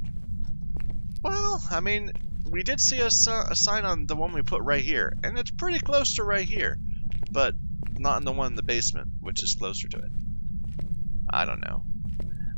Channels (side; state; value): both; inverted; correlation -1.00